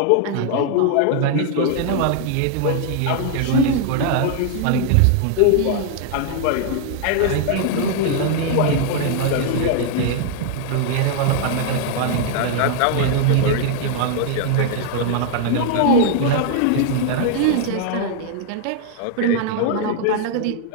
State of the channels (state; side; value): different; both; correlation 0.00